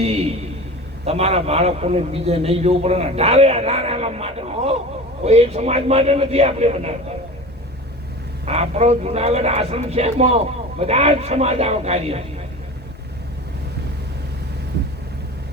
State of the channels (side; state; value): both; normal; correlation 0.34